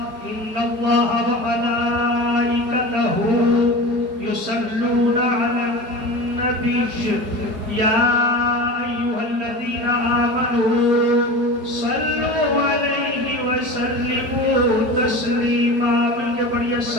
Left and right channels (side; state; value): left; late; 4.8 ms